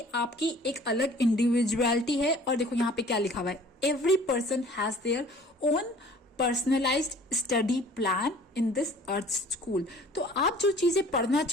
आपकी एक अलग इंडिविजुअलिटी है। और देखो यहाँ पे क्या लिखा हुआ है, every person has their own personalised study plan in this earth school. तो आप जो चीजें पढ़ना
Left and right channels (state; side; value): normal; both; correlation 0.50